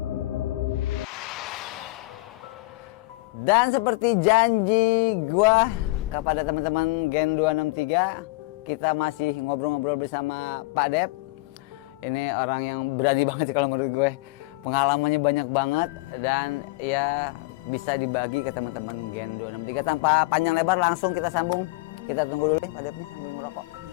Dan seperti janji gua kepada teman-teman Gen 263, kita masih ngobrol-ngobrol bersama Pak Dep. Ini orang yang berani banget sih kalau menurut gue. Pengalamannya banyak banget dan ya bisa dibagi ke teman-teman Gen 263. Tanpa panjang lebar langsung kita sambung. Kita tunggu dulu nih Pak Dep nih sambil merokok.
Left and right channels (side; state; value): right; quieter; 23.0 dB